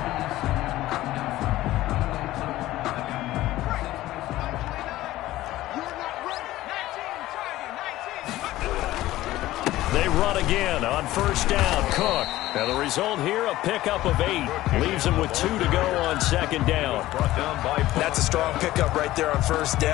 They run again on first down. Cook. Now the result here, a pickup of 8. Leaves him with 2 to go on second down. That's a strong pickup right there on first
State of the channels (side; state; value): right; quieter; 16.0 dB